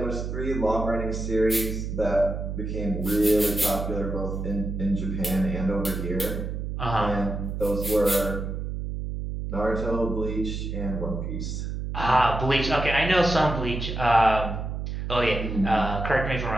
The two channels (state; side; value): noise; right; hum, 4 dB below the sound